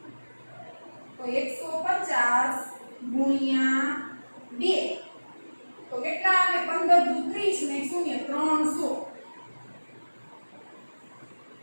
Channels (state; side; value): inverted; both; correlation -1.00